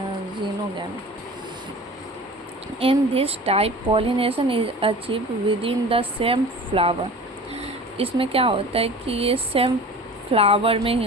xenogamy. In this type pollination is achieve with in the same flower. इसमें क्या होता है कि ये सेम फ्लावर में ही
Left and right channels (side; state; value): both; normal; correlation 0.39